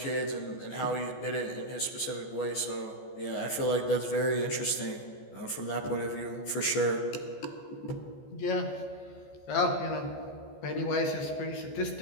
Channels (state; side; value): late; right; 14 ms